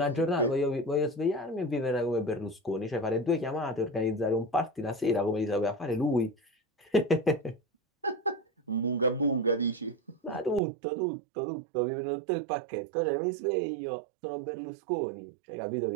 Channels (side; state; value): left; drops out; at 10.6 s